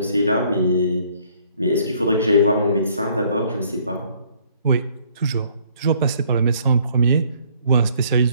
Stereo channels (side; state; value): both; inverted; correlation -0.61